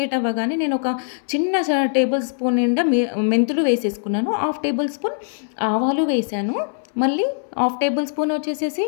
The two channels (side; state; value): right; silent; 60 dB below the other